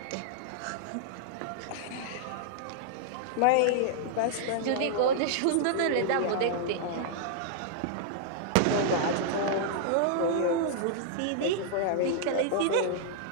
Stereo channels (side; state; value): both; different; correlation -0.01